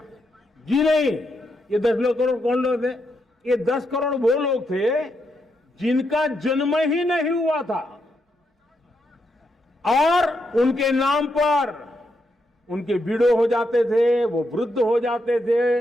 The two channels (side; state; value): both; normal; correlation 0.81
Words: जी नहीं, ये 10 करोड़ कौन लोग थे? ये 10 करोड़ वो लोग थे जिनका जन्म ही नहीं हुआ था और उनके नाम पर उनके विडो हो जाते थे, वो वृद्ध हो जाते थे,